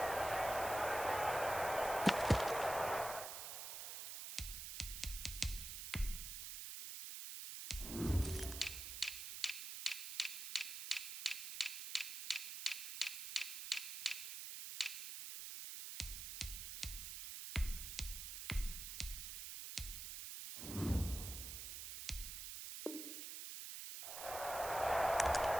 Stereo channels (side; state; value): right; noise; hiss, 6 dB below the sound